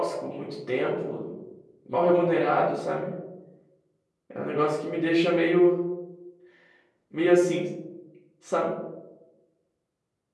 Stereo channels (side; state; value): both; identical; correlation 1.00